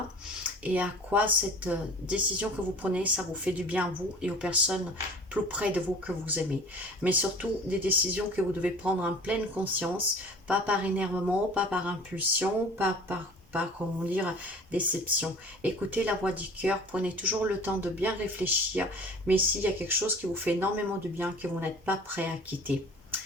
et à quoi cette décision que vous prenez, ça vous fait du bien à vous et aux personnes plus près de vous que vous aimez. Mais surtout, des décisions que vous devez prendre en pleine conscience, pas par énervement, pas par impulsion, pas comment dire, déception. Écoutez la voix du cœur, prenez toujours le temps de bien réfléchir, mais s'il y a quelque chose qui vous fait énormément de bien, que vous n'êtes pas prêt à quitter.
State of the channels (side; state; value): both; normal; correlation 0.44